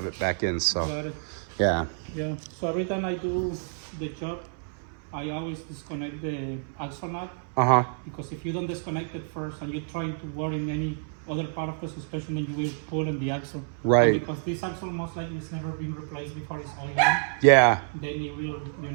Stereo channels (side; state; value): left; silent; 59 dB below the other